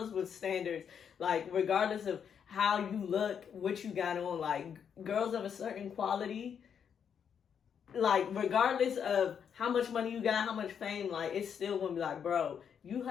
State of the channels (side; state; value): right; quieter; 7.7 dB